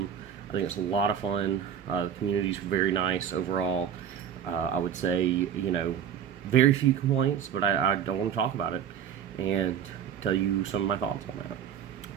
I think it's a lot of fun. The community's very nice overall. I would say, very few complaints, but I don't want to talk about it and tell you some of my thoughts on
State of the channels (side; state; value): left; quieter; 8.6 dB